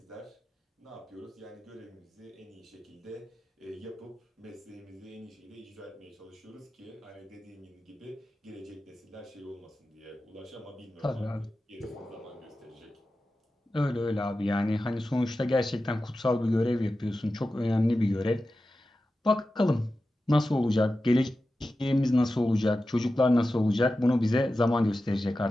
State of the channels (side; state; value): both; normal; correlation 0.93